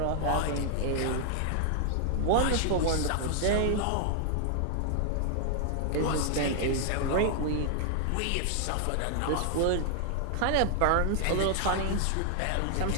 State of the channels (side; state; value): both; different; correlation 0.00